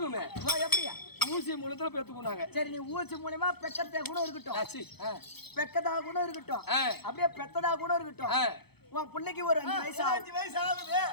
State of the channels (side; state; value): right; late; 0.98 ms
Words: எப்படியா ஊசி மூலத்துல பெத்துக்குனாங்க சரி நீ ஊசி மூலமா பெக்கத்தா கூட இருக்கட்டும் பெக்கதா கூட இருக்கட்டும் அப்படியே பெத்ததா கூட இருக்கட்டும் உன் பிள்ளைக்கு ஒரு 5 வயசு 5 வயசு ஆகுது